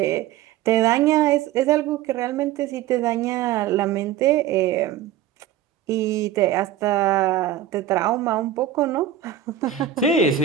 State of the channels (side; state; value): left; quieter; 10.7 dB